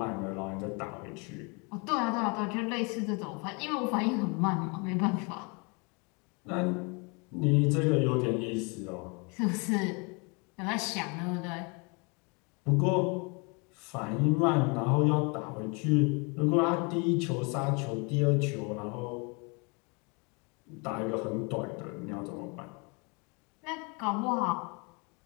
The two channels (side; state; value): right; quieter; 31.7 dB